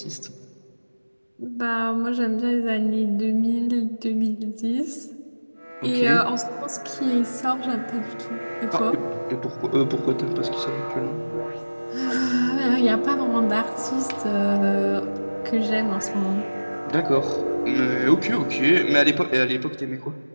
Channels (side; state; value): both; inverted; correlation -1.00